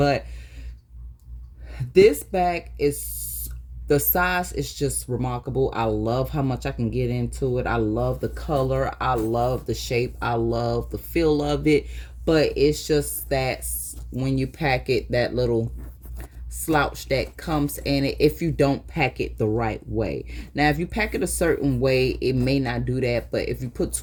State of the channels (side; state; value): both; identical; correlation 1.00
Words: this bag is, the size is just remarkable. I love how much I can get into it. I love the color. I love the shape. I love the feel of it. But it's just that when you pack it, that little slouch that comes in it if you don't pack it the right way. Now, if you pack it a certain way, it may not do that. But if you put